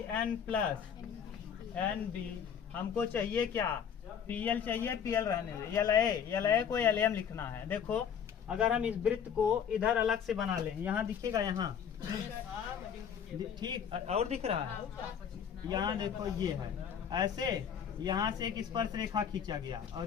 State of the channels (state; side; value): quieter; right; 8.0 dB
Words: plus NB। हमको चाहिए क्या? PL चाहिए, PL रहने दे, LA को LM लिखना है। देखो अगर हम इस वृत्त को इधर अलग से बना लें, यहाँ दिखेगा, यहाँ ठीक, और दिख रहा है, यहाँ देखो ये है ऐसे, यहाँ से एक स्पर्श रेखा खींचा गया